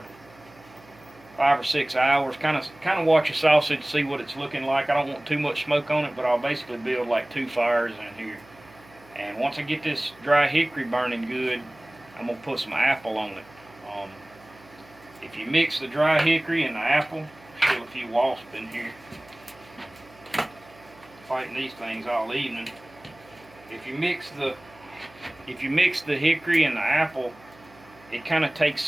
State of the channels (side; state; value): right; noise; hum, 25 dB below the sound